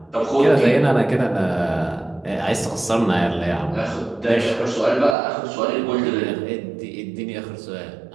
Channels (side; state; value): left; drops out; at 5.2 s